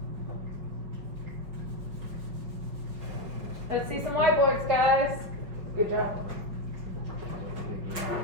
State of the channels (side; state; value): left; late; 5.5 ms